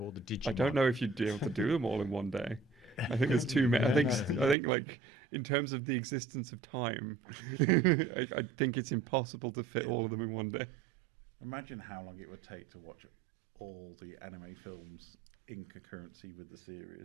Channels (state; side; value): drops out; left; at 4.5 s